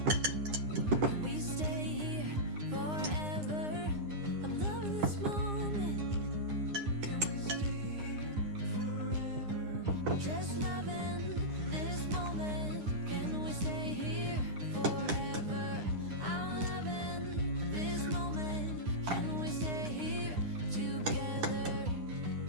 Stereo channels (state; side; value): late; left; 9.8 ms